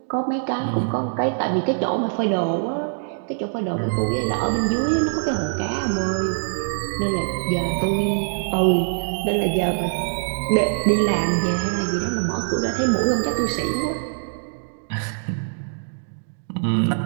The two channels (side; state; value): left; silent; digital silence